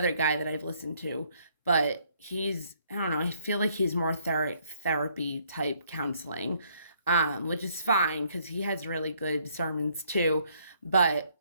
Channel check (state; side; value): inverted; both; correlation -0.67